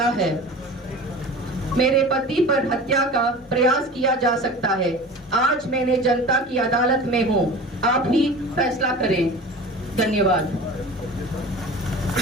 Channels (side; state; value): both; normal; correlation 0.37